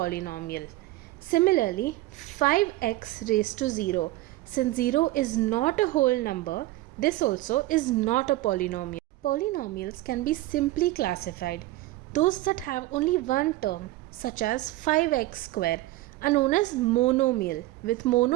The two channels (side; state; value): left; quieter; 17.5 dB